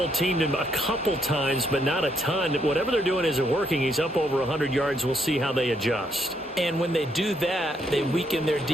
him a couple times, but not a ton. Whatever they're doing isn't working. He's up over 100 yards. We'll see how they adjust. And when they do that, they weaken their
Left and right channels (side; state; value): both; normal; correlation 0.74